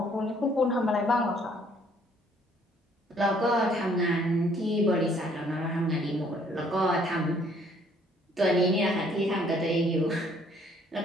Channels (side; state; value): both; normal; correlation 0.62